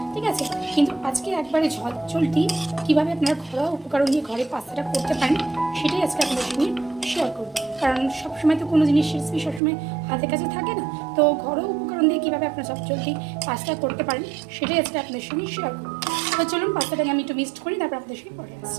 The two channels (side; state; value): left; drops out; at 9.6 s